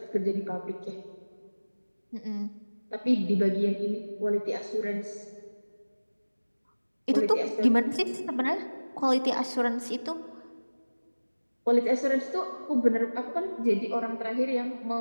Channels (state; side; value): inverted; both; correlation -1.00